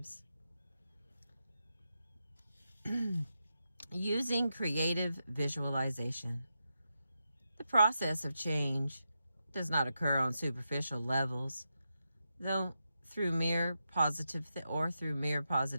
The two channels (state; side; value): inverted; both; correlation -0.87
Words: Using creative visualization. The process of change does not occur on superficial levels, though through mere positive